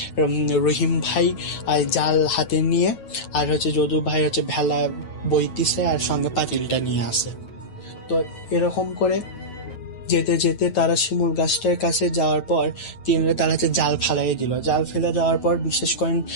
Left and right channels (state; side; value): late; right; 9.2 ms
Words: রহিম ভাই ভাই জাল হাতে নিয়ে আর হচ্ছে যদু ভাই হচ্ছে ভেলা বইতিছে আর সঙ্গে পাতিলটা নিয়ে আসে। তো এরকম করে যেতে যেতে তারা শিমুল গাছটার কাছে যাওয়ার পর তারা হচ্ছে জাল ফেলাই দিল। জাল ফেলে দেওয়ার পর বিশেষ করেন